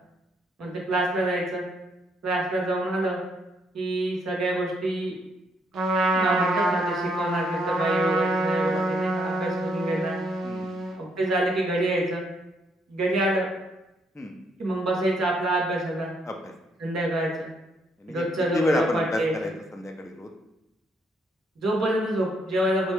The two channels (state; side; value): normal; both; correlation 0.72